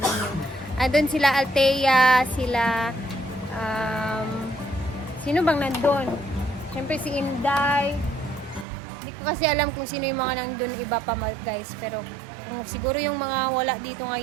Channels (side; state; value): left; drops out; at 8.7 s